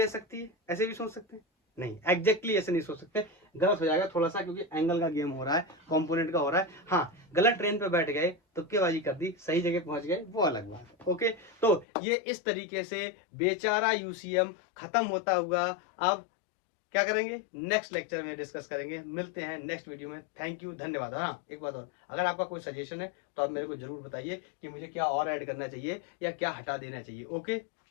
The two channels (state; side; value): drops out; right; at 11.9 s